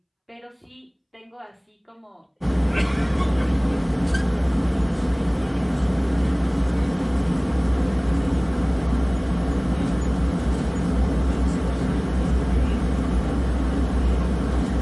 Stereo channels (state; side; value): identical; both; correlation 1.00